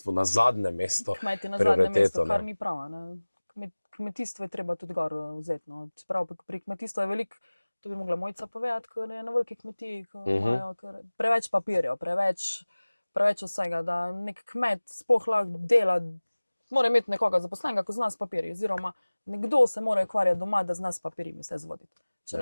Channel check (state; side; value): inverted; both; correlation -1.00